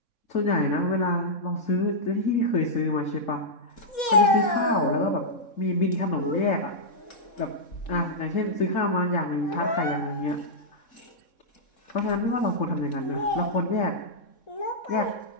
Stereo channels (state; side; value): late; right; 3.6 ms